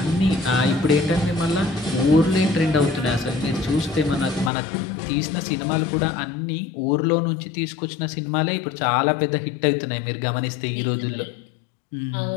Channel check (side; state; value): right; drops out; at 4.5 s